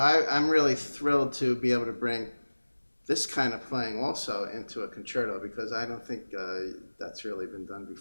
really thrilled to be able to bring this kind of playing also into a concerto because I don't think that's really been done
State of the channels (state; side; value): inverted; both; correlation -1.00